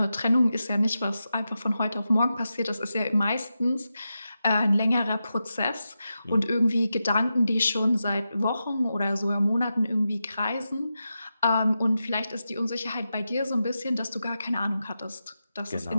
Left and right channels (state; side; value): inverted; both; correlation -0.90